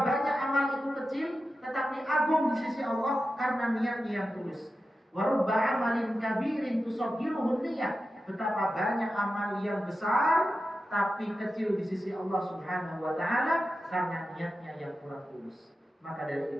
banyak amal itu kecil tetapi agung di sisi Allah karena niatnya yang tulus. Wa rubba amalin kabirin tusaggiruhun niyah. Betapa banyak amal yang besar tapi kecil di sisi Allah Subhanahu wa Ta'ala karena niatnya yang kurang tulus. Maka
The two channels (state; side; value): normal; both; correlation 0.92